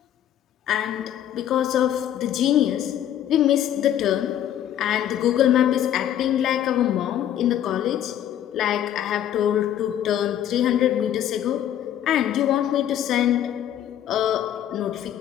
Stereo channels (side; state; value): right; quieter; 10.9 dB